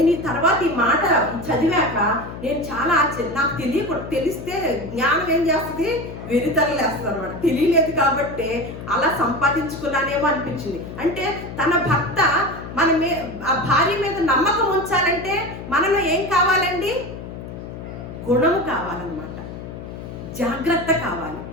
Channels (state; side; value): noise; left; hum, 11 dB below the sound